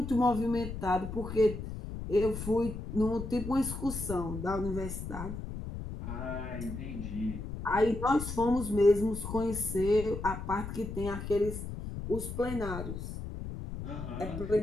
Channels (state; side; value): noise; left; rumble, 7 dB below the sound